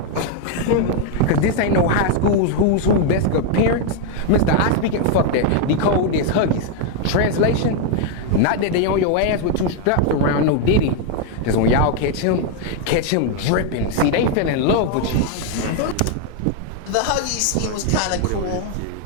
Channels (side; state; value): both; different; correlation 0.00